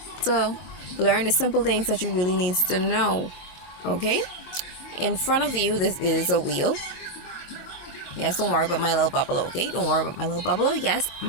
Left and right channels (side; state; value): right; late; 23 ms